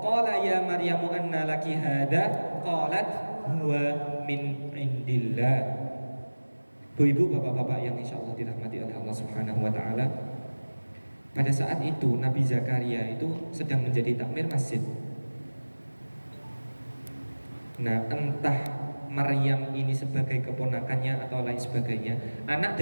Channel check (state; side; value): inverted; both; correlation -1.00